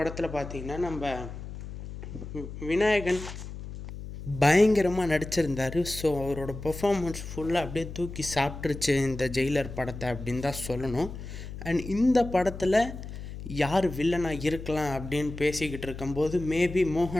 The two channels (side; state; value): left; noise; hum, 10 dB below the sound